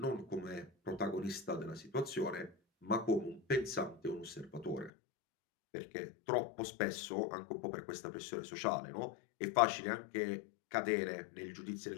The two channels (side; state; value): right; drops out; at 4.9 s